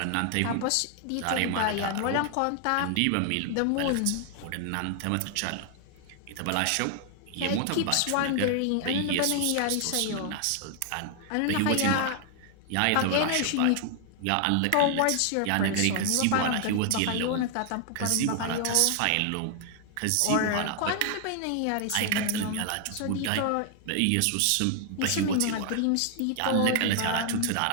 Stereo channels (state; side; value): different; both; correlation 0.00